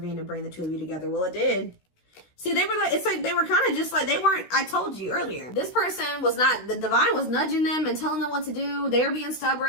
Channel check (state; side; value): late; right; 16 ms